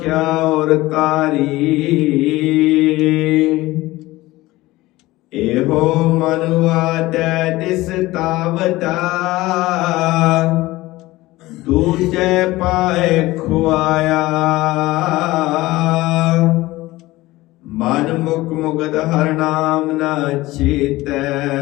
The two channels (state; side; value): quieter; right; 18.6 dB